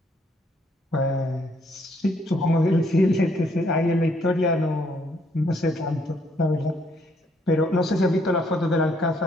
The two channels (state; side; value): normal; both; correlation 0.69